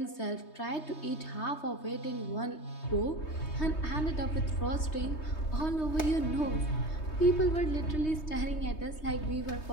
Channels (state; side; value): late; right; 3.2 ms